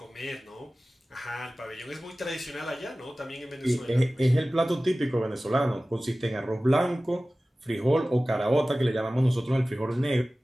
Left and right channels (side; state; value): both; normal; correlation 0.97